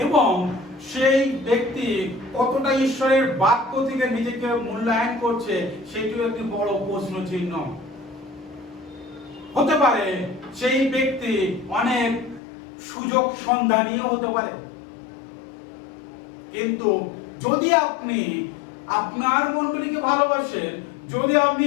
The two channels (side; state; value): right; drops out; at 12.4 s